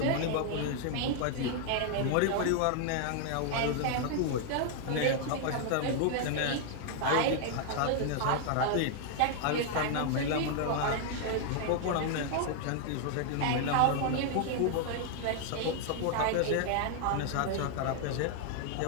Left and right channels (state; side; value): different; both; correlation 0.00